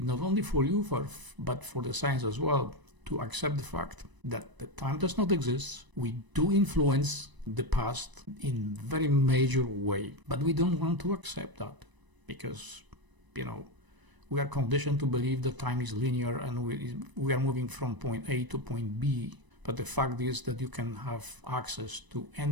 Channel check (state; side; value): late; left; 1.0 ms